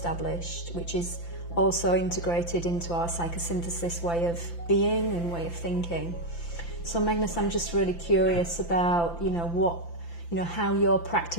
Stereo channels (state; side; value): late; right; 5.9 ms